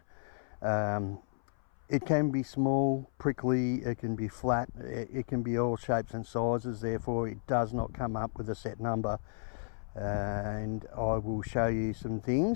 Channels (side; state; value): right; silent; 56 dB below the other